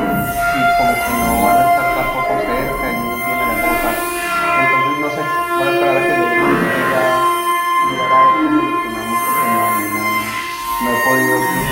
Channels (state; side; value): identical; both; correlation 1.00